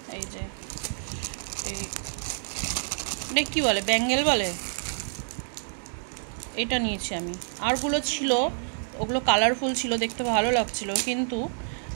এই যে এটা কী বলে, ব্যাঙ্গেল বলে, এটা নিয়েছি আমি। আরগুলো ছিল, ওগুলো কালারফুল ছিল, দেখতে ভালো লাগছিল, কিন্তু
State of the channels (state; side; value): silent; left; digital silence